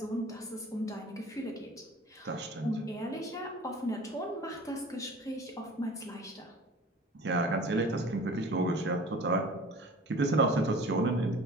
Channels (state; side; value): normal; both; correlation 0.43